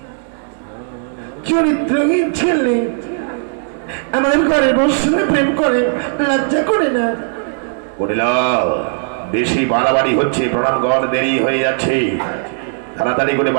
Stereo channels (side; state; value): left; silent; digital silence